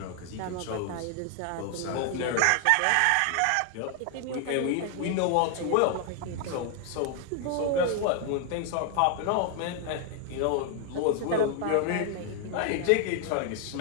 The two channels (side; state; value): both; different; correlation 0.00